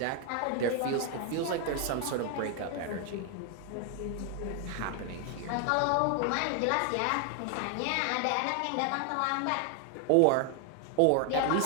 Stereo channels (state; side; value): different; both; correlation 0.00